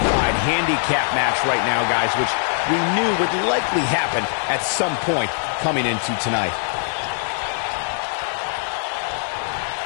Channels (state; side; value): silent; right; 60 dB below the other